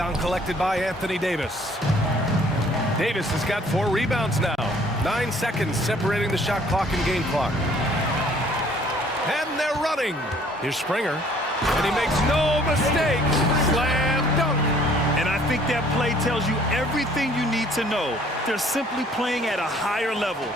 collected by Anthony Davis. Davis has got 4 rebounds now. 9 seconds separating the shot clock and game clock. And they're running. Here's Springer. And he makes no mistake. Slam dunk. And I think that play tells you everything you need to know. They're simply playing at a higher level,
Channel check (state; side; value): normal; both; correlation 0.58